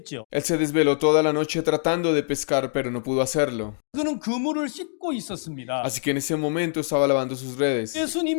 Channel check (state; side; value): silent; right; digital silence